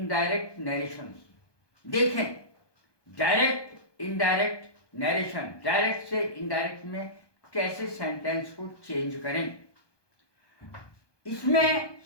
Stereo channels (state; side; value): late; right; 1.2 ms